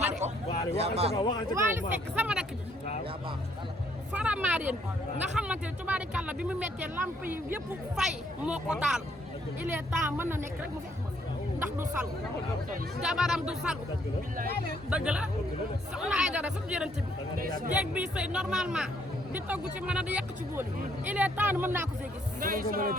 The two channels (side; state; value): both; normal; correlation 0.68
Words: ma de. waxal ca kaw waxal ca kaw. Waly Seck sama rakk ji. Faramareen nga xamante ne tubaari kan la bi mu méttee lamp yi yëpp fay moo ko taal il est temps mën na nekk rek mu fekk ma fi ndax du salu jabaram du salu dëgg la soxna ay dara su jërënte bi jéeg bi sëy normalement di togg ci mën a di yàq ci bool yi il est temps mën naa ko fee gis